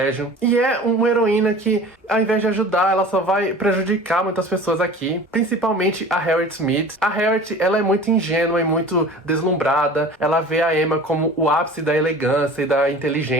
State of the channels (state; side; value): normal; both; correlation 0.40